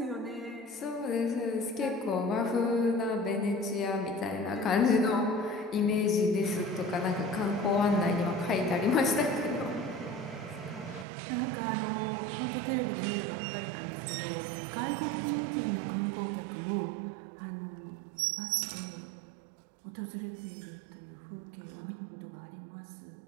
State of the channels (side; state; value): left; drops out; at 11.1 s